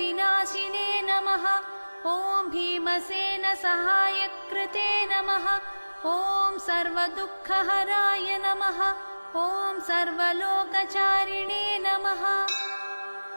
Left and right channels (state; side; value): inverted; both; correlation -1.00